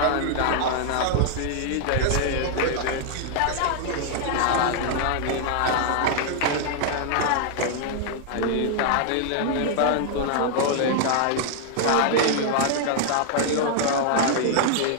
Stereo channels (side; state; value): both; different; correlation 0.00